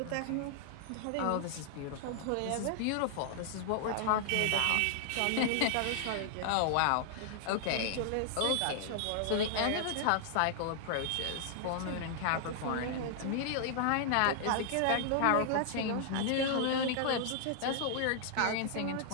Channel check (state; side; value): different; both; correlation -0.01